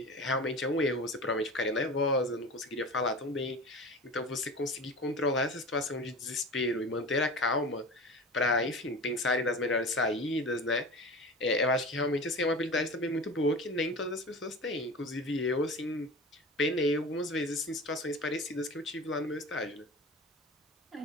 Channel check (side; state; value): both; normal; correlation 0.33